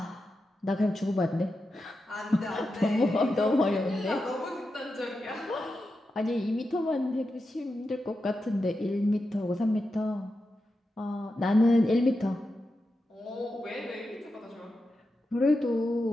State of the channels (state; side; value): normal; both; correlation 0.89